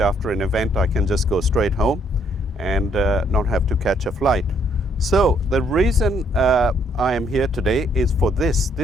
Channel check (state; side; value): normal; both; correlation 0.68